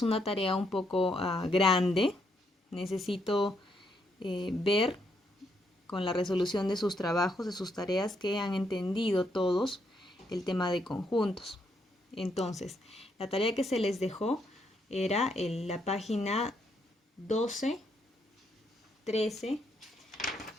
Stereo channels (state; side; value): normal; both; correlation 0.76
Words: una tarea un poco grande. Necesito ver con la resolución de sus trabajos, de sus tareas, que han entendido todos el tema de conjuntos. Entonces, la tarea que se les dejó era en la página 12, 13